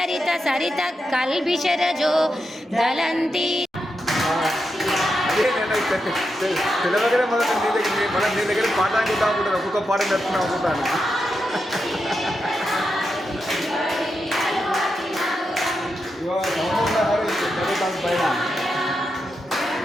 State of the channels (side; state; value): both; normal; correlation 0.86